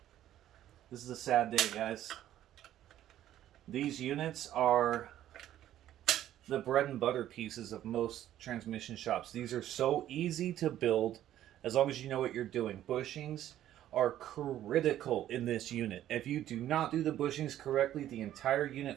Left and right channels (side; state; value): left; quieter; 12.3 dB